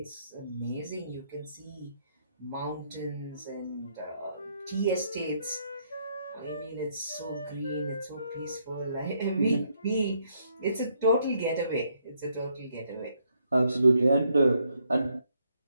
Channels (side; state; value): both; inverted; correlation -0.74